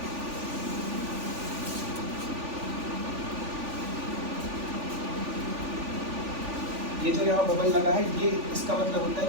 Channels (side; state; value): left; late; 3.4 ms